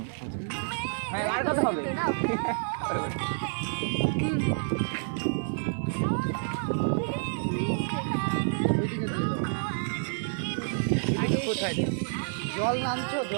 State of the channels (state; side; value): silent; left; 59 dB below the other